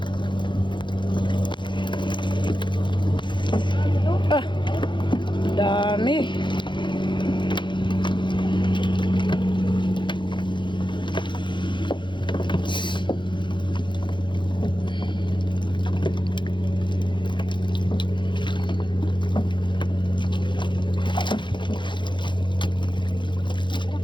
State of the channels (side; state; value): right; late; 0.23 ms